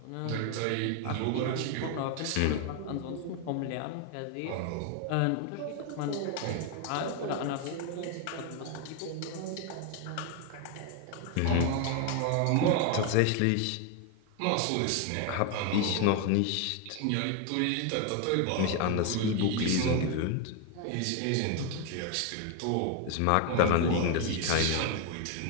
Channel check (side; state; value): both; different; correlation 0.01